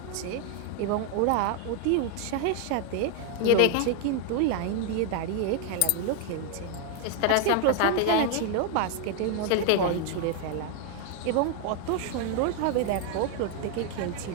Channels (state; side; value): different; both; correlation 0.00